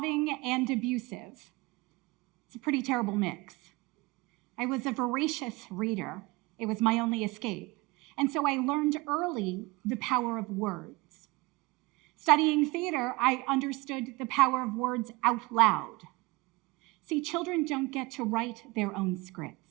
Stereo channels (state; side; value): quieter; left; 23.5 dB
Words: and abusive. It's a pretty terrible mix. I was a voracious reader. It was my only escape. And so I learned early the power of words. Studying theater, I understood the power of words out loud. See, children don't get to write their own